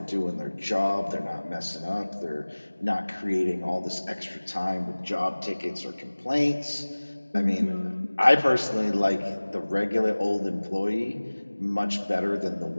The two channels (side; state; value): both; inverted; correlation -1.00